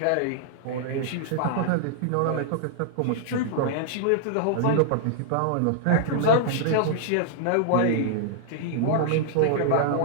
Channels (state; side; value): different; both; correlation -0.01